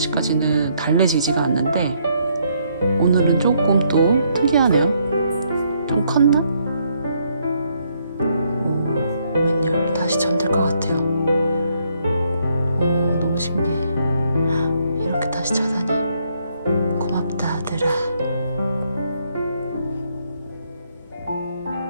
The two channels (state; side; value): inverted; both; correlation -0.72